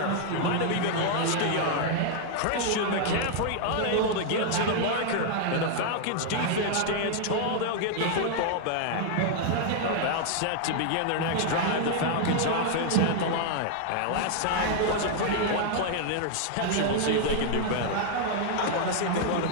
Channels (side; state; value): both; different; correlation 0.00